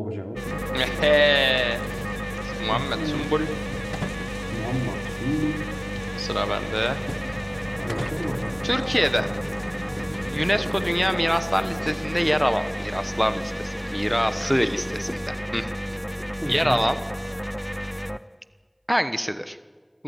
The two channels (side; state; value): both; identical; correlation 1.00